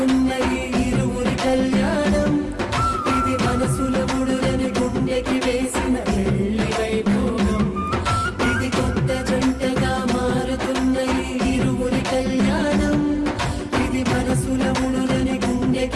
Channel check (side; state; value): both; identical; correlation 1.00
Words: ఈ ఇరువురి కళ్యాణం ఇది మనసుల ముడులని గుండెకి వేసిన పెళ్లి వైభోగం ఇది కొత్త జంటగా మారుతున్న ఈ ఇరువురి కళ్యాణం ఇది మనసుల ముడులని